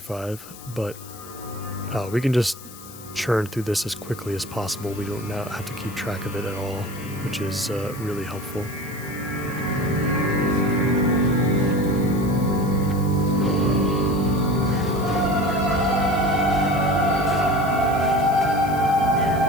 but we can just churn through this as quickly as possible. We don't now have to keep track of it at all, which is really helpful.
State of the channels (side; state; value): left; noise; hiss, 17 dB below the sound